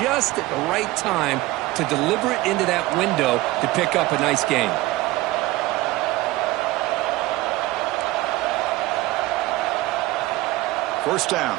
at the right time to deliver it into that window to pick up a nice gain. First down,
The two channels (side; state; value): left; quieter; 18.8 dB